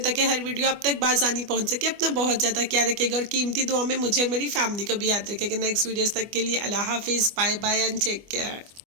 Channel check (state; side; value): late; left; 24 ms